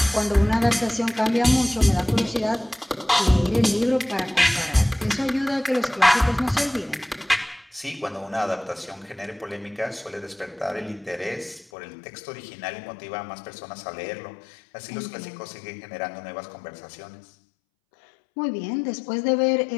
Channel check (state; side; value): drops out; right; at 11.7 s